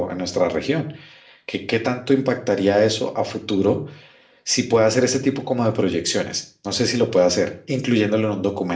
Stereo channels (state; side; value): identical; both; correlation 1.00